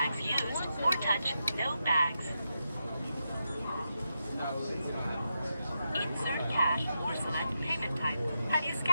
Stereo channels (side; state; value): both; inverted; correlation -0.86